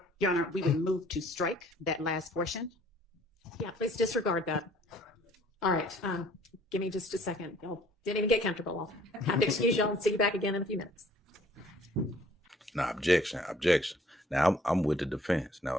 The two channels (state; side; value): normal; both; correlation 0.57